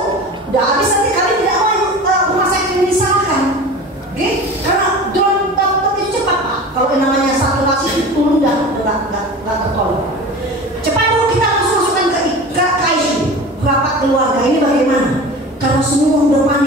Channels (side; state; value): both; normal; correlation 0.35